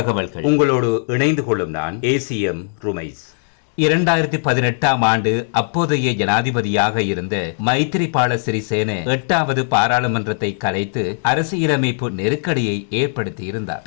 உங்களோடு இணைந்து கொள்ளும் நான் ஏசிஎம் ருமைஸ். 2018ஆம் ஆண்டு அப்போதைய ஜனாதிபதியாக இருந்த மைத்திரிபால சிறிசேன 8வது பாராளுமன்றத்தை கலைத்து அரசியலமைப்பு நெருக்கடியை ஏற்படுத்தியிருந்தார்.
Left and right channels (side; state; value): right; silent; digital silence